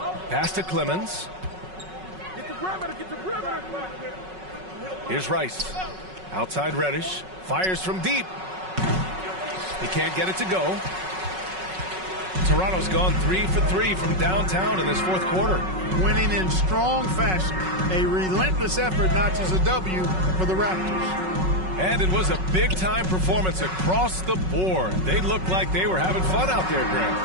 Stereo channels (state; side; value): late; left; 5.4 ms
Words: Pass to Clemens. Here's Rice. Outside Reddish. Fires from deep. He can't get it to go. Toronto's gone 3 for 3 from downtown in this fourth quarter. Winning in strong fashion. A relentless effort notches a W for the Raptors. And it was a big-time performance across the board. They looked like they were having fun out there, Grant.